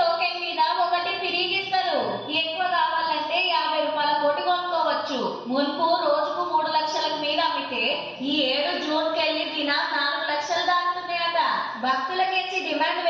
మీద ఒకటి తిరిగిస్తారు. ఎక్కువ కావాలంటే 50 రూపాయల కోటి కొనుక్కోవచ్చు. మున్పు రోజుకు 3 లక్షలకు మీద అమ్మితే ఈ 7 జూన్కెళ్ళి దిన 4 లక్షలు దాటుతున్నాయట. భక్తులకించి డిమాండ్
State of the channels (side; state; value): both; identical; correlation 1.00